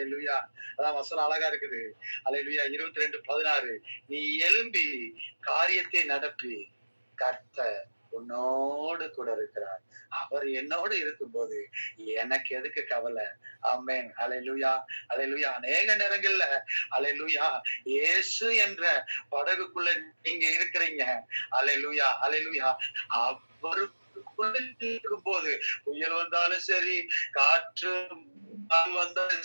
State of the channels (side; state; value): both; inverted; correlation -1.00